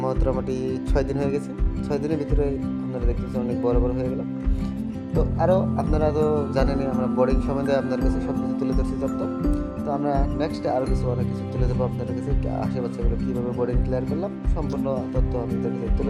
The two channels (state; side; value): identical; both; correlation 1.00